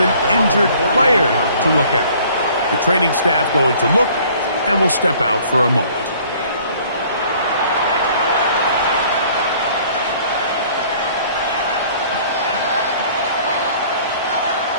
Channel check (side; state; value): both; inverted; correlation -0.54